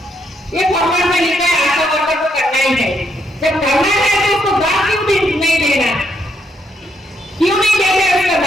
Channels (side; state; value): both; normal; correlation 0.75